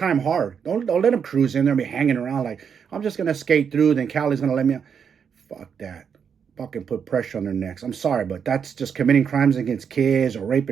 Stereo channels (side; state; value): left; quieter; 7.1 dB